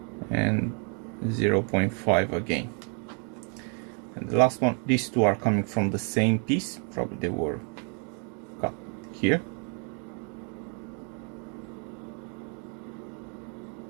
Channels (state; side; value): quieter; left; 39.0 dB